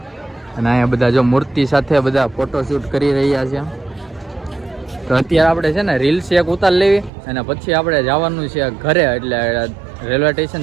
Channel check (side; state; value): left; drops out; at 7.1 s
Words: અને અહીંયા બધા જો મૂર્તિ સાથે બધા ફોટોશૂટ કરી રહ્યા છે. તો અત્યારે આપણે છે ને રીલ્સ એક ઉતાર લેવી અને પછી આપણે જવાનું છે ઘરે એટલે રેલવે